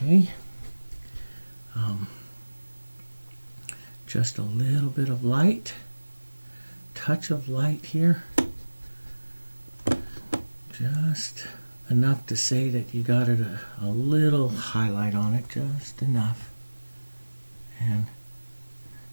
Okay. Just a little bit of light. Touch of light here. Just enough to say that you got it a little highlight on it, just enough. And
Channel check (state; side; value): inverted; both; correlation -1.00